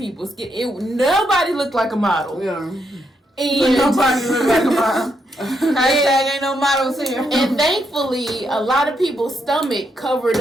Nobody looked like a model. Yeah. And Nobody looked like a model. Hashtag ain't no models here. And thankfully, a lot of people's stomach covered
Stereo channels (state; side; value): normal; both; correlation 0.79